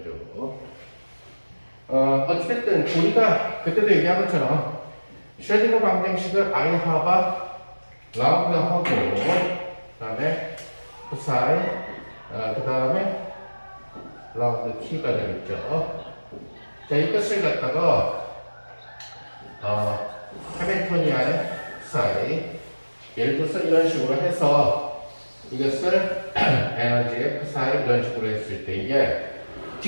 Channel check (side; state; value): both; inverted; correlation -1.00